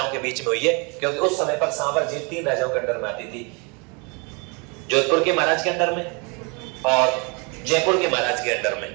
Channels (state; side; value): quieter; left; 31.9 dB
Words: के बीच में हुई है, क्योंकि उस समय पर सांवर झील 3 राजाओं के अंडर में आती थी, जोधपुर के महाराज के अंडर में और जयपुर के महाराज के अंडर